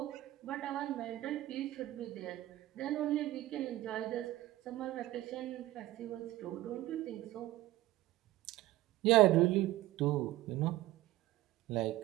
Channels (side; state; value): left; quieter; 16.2 dB